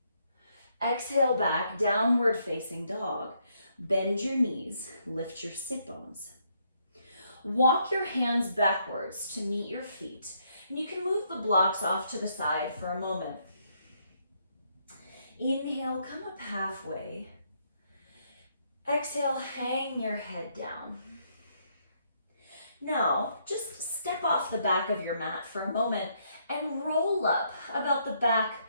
Exhale back, downward facing dog. Bend your knees, lift your sit bones. Walk your hands backwards to meet your feet. And you can move the blocks off to the side for a moment. Inhale, come up halfway. Exhale, hang your head down. Now, just step off the back of your mat for a moment and roll up about the back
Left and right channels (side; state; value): both; inverted; correlation -0.73